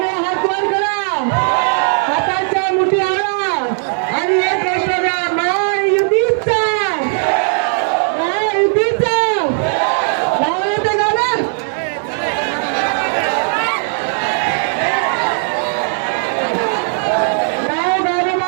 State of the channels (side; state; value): left; silent; 59 dB below the other